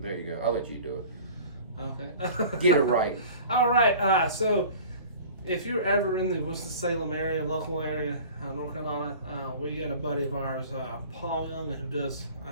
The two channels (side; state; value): both; inverted; correlation -0.43